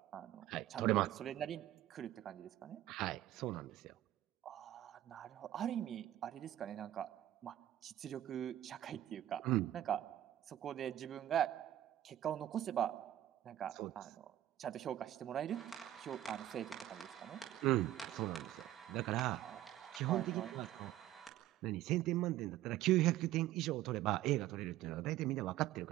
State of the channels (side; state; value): left; quieter; 13.5 dB